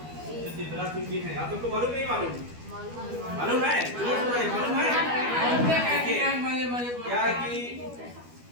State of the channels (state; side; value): late; left; 12 ms